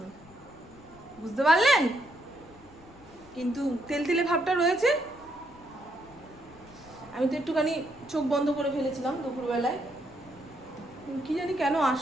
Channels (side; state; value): left; noise; rumble, 23 dB below the sound